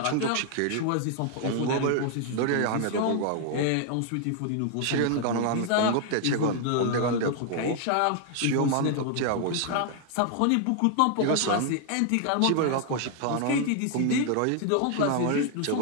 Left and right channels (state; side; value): different; both; correlation 0.00